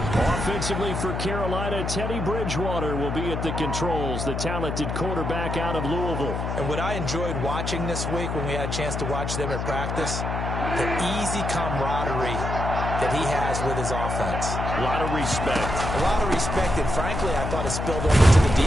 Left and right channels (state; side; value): noise; left; hum, 3 dB below the sound